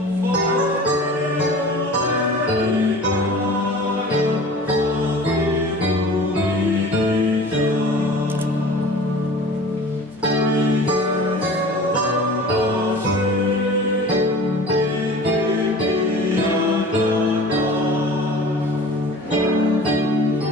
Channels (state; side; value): normal; both; correlation 0.42